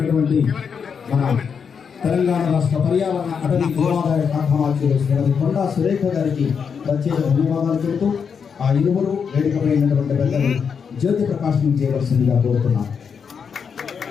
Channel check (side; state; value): right; quieter; 6.5 dB